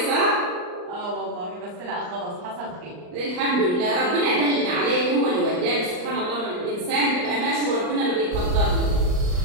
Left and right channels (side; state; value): left; late; 39 ms